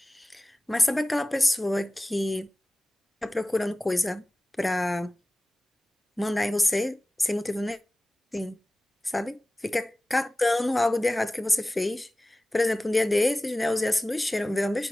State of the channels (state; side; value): normal; both; correlation 0.97